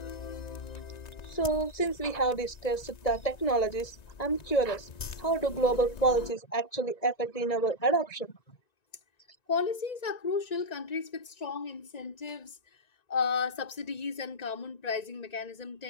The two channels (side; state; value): right; late; 1.9 ms